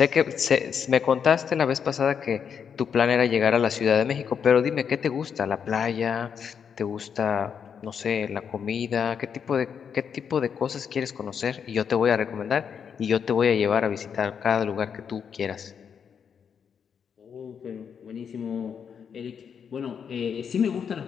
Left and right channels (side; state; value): right; quieter; 7.2 dB